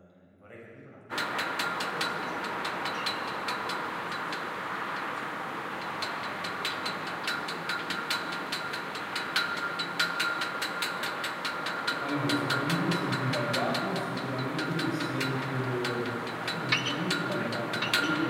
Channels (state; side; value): identical; both; correlation 1.00